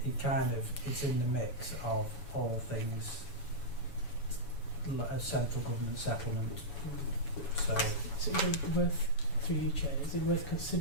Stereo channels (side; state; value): right; late; 7.1 ms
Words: it's in the mix of all things a central government settlement. So is it worth, through you, Chair, is it worth